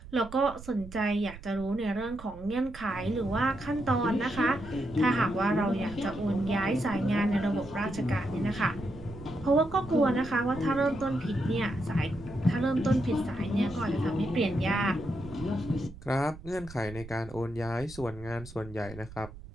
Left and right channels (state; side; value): noise; right; rumble, 16 dB below the sound